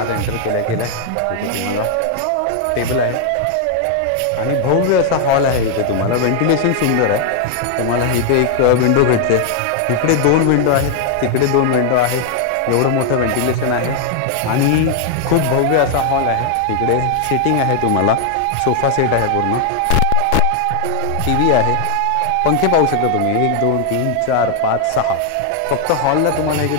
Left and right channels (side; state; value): both; different; correlation 0.00